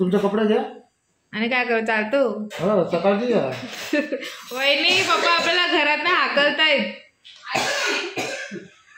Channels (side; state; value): both; identical; correlation 1.00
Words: कपडे घ्या. आणि काय करू चालतो? हो सकाळची घ्या. वहिनी पप्पा आपल्याला घरात ना हाकलतायत.